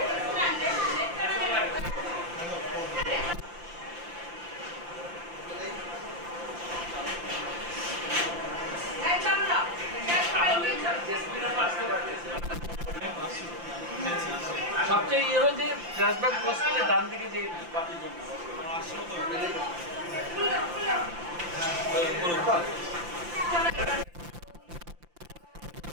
এই চলো না সবচেয়ে ইয়ে হলো যে ফ্ল্যাশব্যাক ক্রস করলে ডান দিকে যে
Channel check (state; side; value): late; left; 5.8 ms